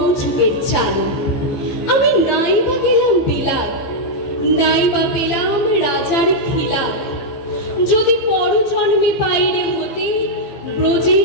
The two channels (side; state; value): right; late; 15 ms